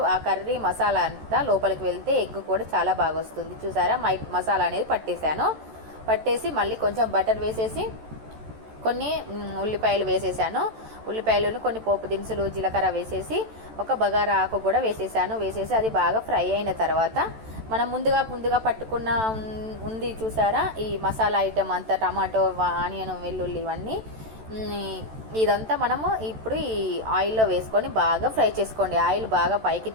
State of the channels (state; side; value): late; left; 14 ms